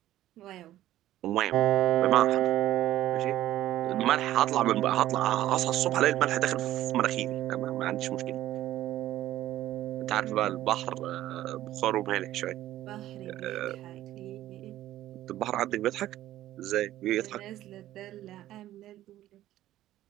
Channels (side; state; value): left; quieter; 14.0 dB